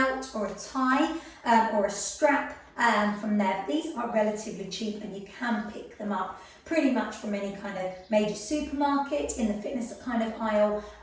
or a tie or a strap from there. These are relatively cheap and you can pick them up pretty much from any kind of major supermarket, in the fitness kind of aisle,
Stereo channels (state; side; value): identical; both; correlation 1.00